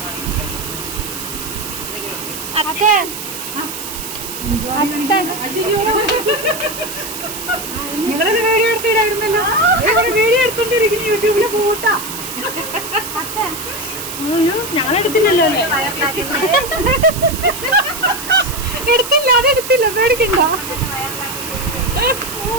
அத்தை അത്ത നിങ്ങളത് വീഡിയോ എടുത്തിടായിരുന്നല്ലോ. വീഡിയോ എടുത്തോണ്ടിരിക്കുന്നു യൂട്യൂബില് പോട്ടാ. ഞങ്ങളെടുത്തില്ലല്ലോ. എടുത്തില്ല, അതെടുത്തില്ല, പേടിക്കണ്ട.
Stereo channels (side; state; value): right; noise; hiss, 8 dB below the sound